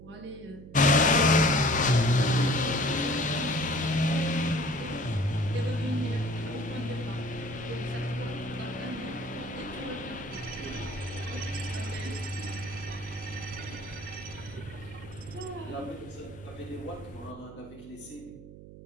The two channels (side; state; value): right; noise; hum, 16 dB below the sound